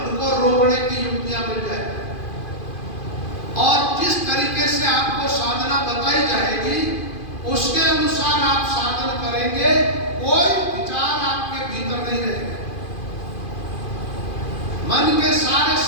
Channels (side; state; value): right; late; 2.5 ms